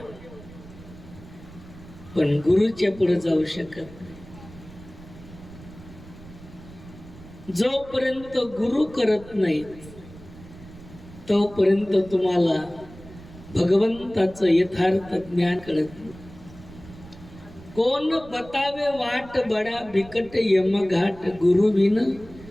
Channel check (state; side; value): noise; right; rumble, 18 dB below the sound